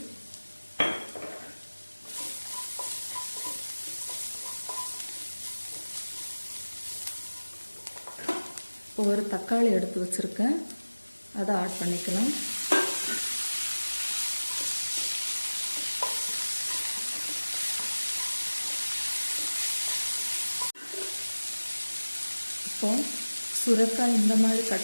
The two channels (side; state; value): both; inverted; correlation -1.00